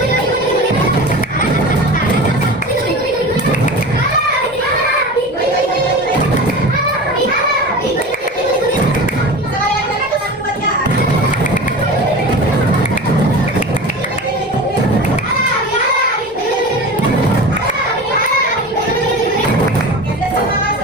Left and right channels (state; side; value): normal; both; correlation 0.33